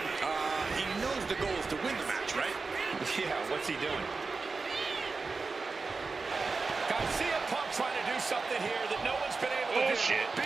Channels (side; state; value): left; quieter; 4.2 dB